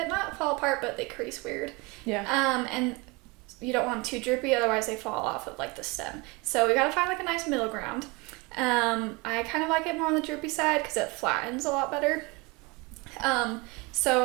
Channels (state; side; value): quieter; left; 26.5 dB